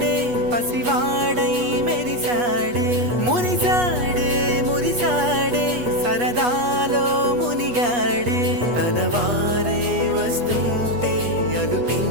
పసివాడై మెరిసాడే, మురిసాడే మురిసాడే సరదాలో మునిగాడే. తనవారే వస్తుంటే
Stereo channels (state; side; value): late; left; 8.3 ms